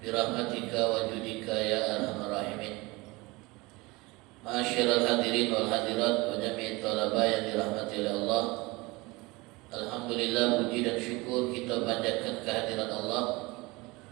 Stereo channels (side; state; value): left; quieter; 23.4 dB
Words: bi rahmatika wa judika ya arhamar rahimin. Ma'asyiral hadirin wal hadirat wa jami'it talaba yang dirahmati oleh Allah. Alhamdulillah, puji dan syukur kita panjatkan kehadiran Allah